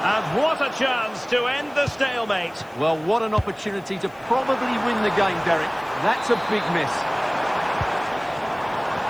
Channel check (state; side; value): noise; left; hiss, 30 dB below the sound